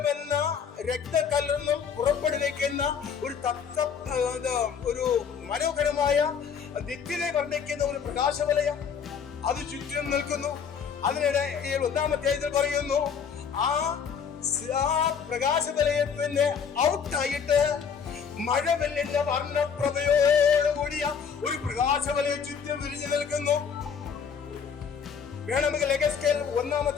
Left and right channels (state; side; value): quieter; right; 6.8 dB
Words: രക്തക്കല്ലെന്നും പുറപ്പെടുവിക്കുന്ന ഒരു മനോഹരമായ ദിക്കിനെ വർണ്ണിക്കുന്ന ഒരു പ്രകാശവലയം അത് ചുറ്റും നിൽക്കുന്നു. അതിനിടെ 1-ാം അധ്യായത്തിൽ പറയുന്നു, ആ പ്രകാശവലയത്തിന്റെ ഔട്ടായിട്ട് മഴവെല്ലിന്റെ വർണ്ണപ്രഭയോടുകൂടിയ ഒരു പ്രകാശവലയം ചുറ്റും വിരിഞ്ഞു നിൽക്കുന്നു. വേണമെങ്കിൽ യെഹെസ്കേൽ 1-ാം